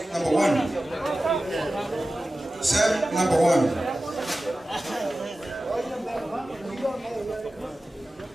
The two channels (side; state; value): both; normal; correlation 0.95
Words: number 1. Sam, number 1.